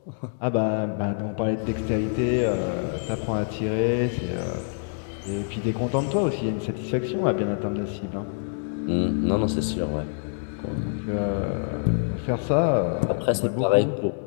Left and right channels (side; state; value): right; silent; digital silence